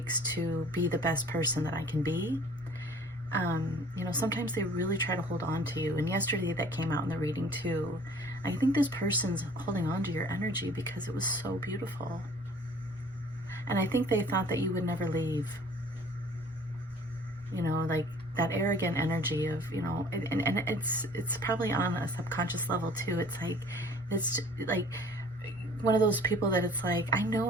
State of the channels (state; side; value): normal; both; correlation 0.51